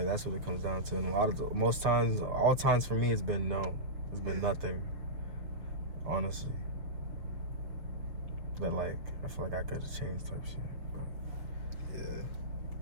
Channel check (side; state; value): left; late; 6.4 ms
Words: that's what it comes down to. And all times for me, it's been no. It's been nothing. Honestly. But like I feel like I could have changed type shit. But,